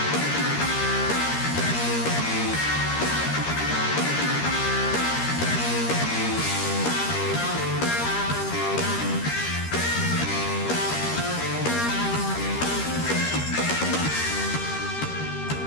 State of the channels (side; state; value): right; late; 13 ms